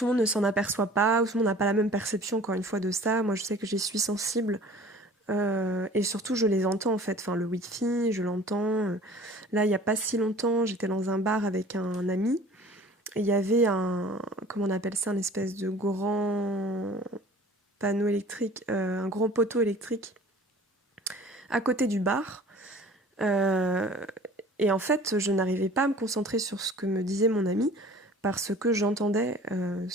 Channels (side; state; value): both; normal; correlation 0.47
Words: le monde ne s'en aperçoit pas, ou tout le monde n'a pas la même perception, encore une fois, de ça. Moi, je sais que j'y suis sensible. Et surtout, je les entends, en fait. Enfin, le Wi-Fi, je l'entends. Là, il n'y a pas si longtemps, j'étais dans un bar avec un ami. Et il y avait comment on appelle ça, un espèce de grand panneau électrique, un grand poteau électrique à côté du bar. Euh, et en fait, je n'arrivais pas à me concentrer sur ce que me disait mon ami parce que j'entendais